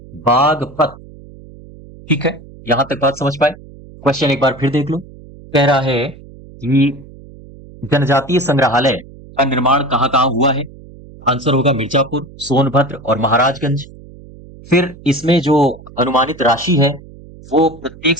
बागपत। ठीक है, यहां तक बात समझ पाए? क्वेश्चन एक बार फिर देख लो। कह रहा है कि जनजातीय संग्रहालय का निर्माण कहां कहां हुआ है? आंसर होगा मिर्जापुर, सोनभद्र और महाराजगंज। फिर इसमें जो अनुमानित राशि है वो प्रत्येक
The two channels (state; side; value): noise; right; hum, 20 dB below the sound